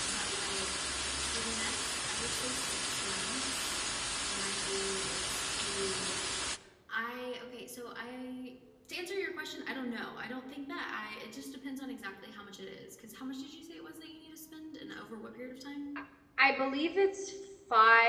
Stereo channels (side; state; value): both; identical; correlation 1.00